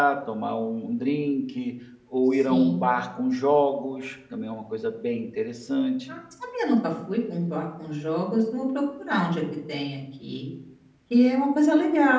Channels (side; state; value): both; identical; correlation 1.00